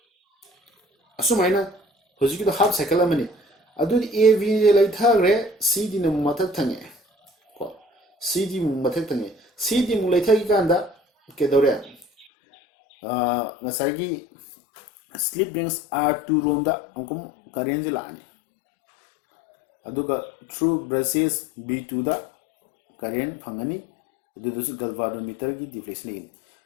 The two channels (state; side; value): drops out; right; at 12.2 s